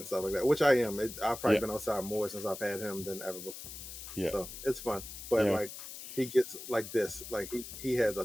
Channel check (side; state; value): left; noise; hiss, 11 dB below the sound